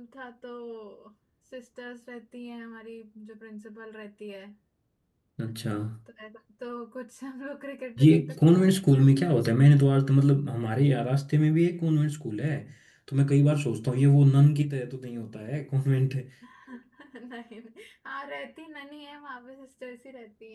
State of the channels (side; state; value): both; identical; correlation 1.00